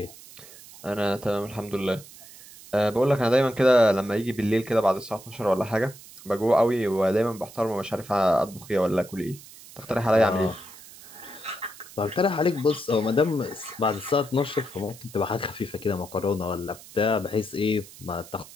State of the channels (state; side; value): noise; right; hiss, 19 dB below the sound